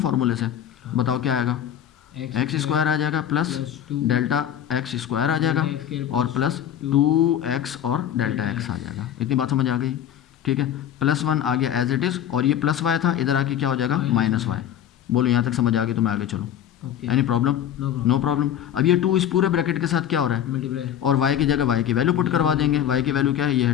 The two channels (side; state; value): right; quieter; 10.3 dB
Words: से, बताओ क्या आएगा, एक्स स्क्वायर आ जाएगा प्लस डेल्टा एक्स स्क्वायर आ जाएगा और प्लस 2x और डेल्टा x आ जाएगा। इतनी बात समझ आ गई, ठीक है। +1 आ गया एज इट इज़ और ये +y था, इधर आके क्या हो जाएगा, -y। बोलो यहाँ तक समझ आ गई तो मैं आगे चलूँ, एनी प्रॉब्लम, नो प्रॉब्लम। अब ये 2 इस पूरे ब्रैकेट के साथ क्या हो रहा है, और y की जगह y की वैल्यू पुट करवा देंगे। y की वैल्यू क्या है, ये